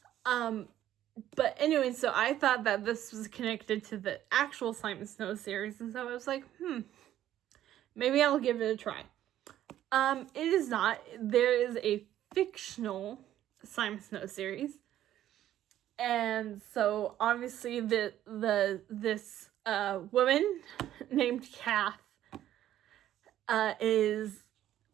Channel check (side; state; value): left; quieter; 12.3 dB